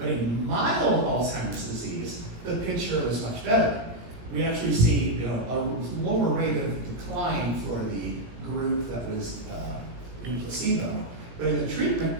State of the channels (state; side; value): late; left; 17 ms